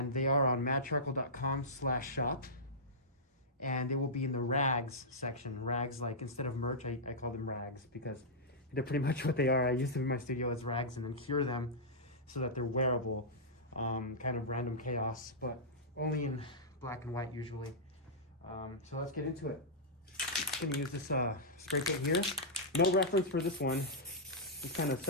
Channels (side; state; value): both; normal; correlation -0.13